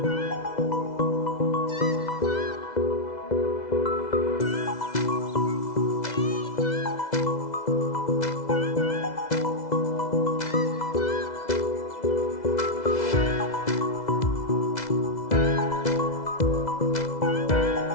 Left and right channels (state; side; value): late; right; 2.0 ms